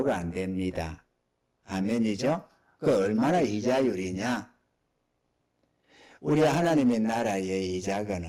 안 됩니다. 아멘이죠? 그 얼마나 이자율이냐? 우리 하나님의 나라의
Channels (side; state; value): both; identical; correlation 1.00